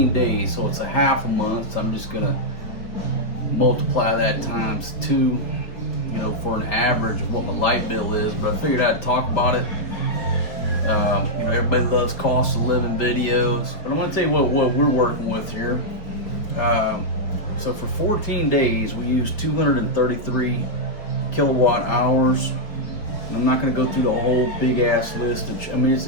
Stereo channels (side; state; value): right; late; 4.9 ms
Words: days, so it's a half a month, so I'm just gonna multiply that times 2, for an average of what my light bill is, but I figured I'd talk about it. Everybody loves cost of living videos, but I want to tell you what we're working with here. So for 14 days, we used 233 kilowatt hours. And I'm not going to go through the whole big ass list.